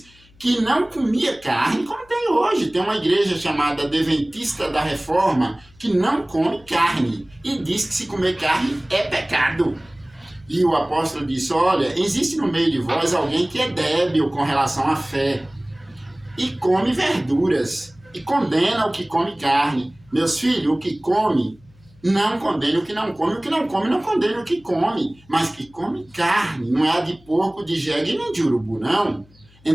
que não comia carne como tem hoje. Tem uma igreja chamada Adventista da Reforma que não come carne e diz que se comer carne é pecado. E o apóstolo disse, olha, existe no meio de vós alguém que é débil com relação à fé e come verduras e condena o que come carne. Meus filhos, o que come, não condene o que não come. O que não come, não condene o que come. Mas que come carne, não é a de porco, de jegue nem de urubu, não.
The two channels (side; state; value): left; noise; hum, 28 dB below the sound